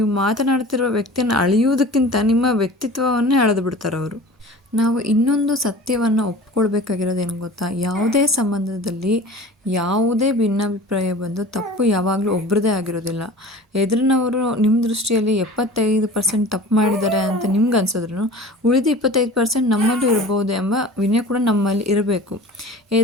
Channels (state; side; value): normal; both; correlation 0.40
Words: ಮಾತನಾಡ್ತಿರುವ ವ್ಯಕ್ತಿಯನ್ನು ಅಳೆಯುವುದಕ್ಕಿಂತ ನಿಮ್ಮ ವ್ಯಕ್ತಿತ್ವವನ್ನೇ ಅಳೆದು ಬಿಡ್ತಾರೆ ಅವರು. ನಾವು ಇನ್ನೊಂದು ಸತ್ಯವನ್ನು ಒಪ್ಕೊಳ್ಬೇಕಾಗಿರೋದೇನು ಗೊತ್ತಾ? ಯಾವುದೇ ಸಂಬಂಧದಲ್ಲಿ ಯಾವುದೇ ಭಿನ್ನಾಭಿಪ್ರಾಯ ಬಂದು ತಪ್ಪು ಯಾವಾಗಲೂ ಒಬ್ಬರದೇ ಆಗಿರೋದಿಲ್ಲ. ಎದುರಿನವರು ನಿಮ್ಮ ದೃಷ್ಟಿಯಲ್ಲಿ 75% ತಪ್ಪು ಮಾಡಿದ್ದಾರೆ ಅಂತ ನಿಮ್ಗೆ ಅನ್ಸಿದ್ರು ಉಳಿದ 25% ನಮ್ಮಲ್ಲೂ ಇರ್ಬೋದು ಎಂಬ ವಿನಯ ಕೂಡ ನಮ್ಮಲ್ಲಿ ಇರಬೇಕು.